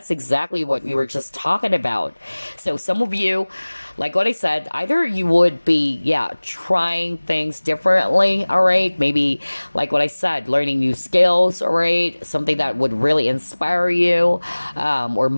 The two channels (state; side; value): inverted; both; correlation -1.00